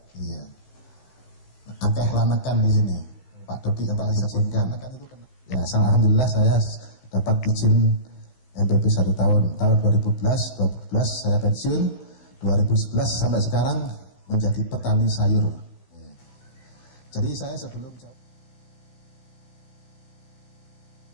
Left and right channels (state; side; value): late; right; 15 ms